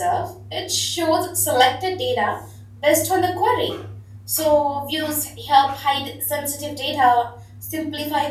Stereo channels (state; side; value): identical; both; correlation 1.00